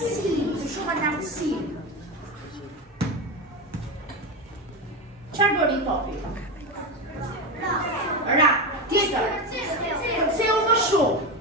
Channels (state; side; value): normal; both; correlation 0.17